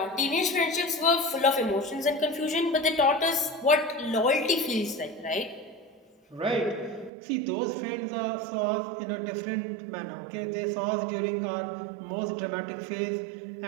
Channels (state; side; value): drops out; left; at 7.1 s